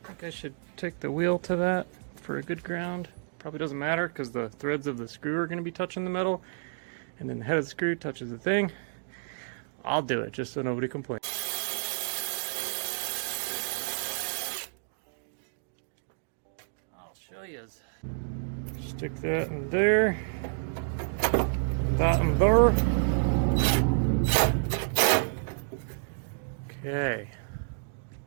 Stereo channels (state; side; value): silent; left; digital silence